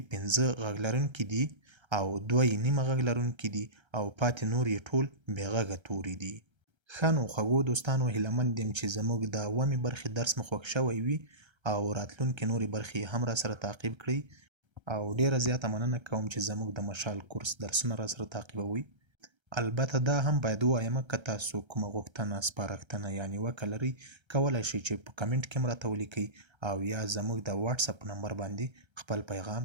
15 غږ لرونکي دي او 2 یې نیمه غږ لرونکي دي او پاتې نور یې ټول بې غږه توري دي. ښه نو خوږو دوستانو هیله مند یم چې زموږ د اوومې برخې درس مو خوښ شوی وي او راتلونکې نورې برخې هم را سره تعقیب کړئ. او ډیره زیاته مننه کوم چې زموږ د مشال کورس درسونه را سره تعقیبوئ. البته دا هم باید ووایم که تاسو کومه غوښتنه سپارښتنه یا نیوکه لرئ کولی شئ چې په کمنټ کې هم راته ولیکئ او یا زموږ د واتساپ نمبر باندې خپل پیغام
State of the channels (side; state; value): left; late; 1.3 ms